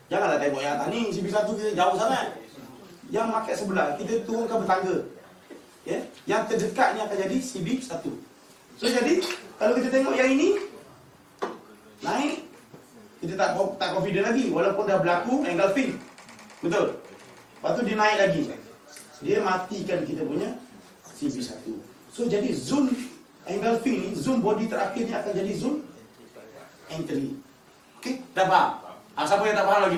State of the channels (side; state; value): both; identical; correlation 1.00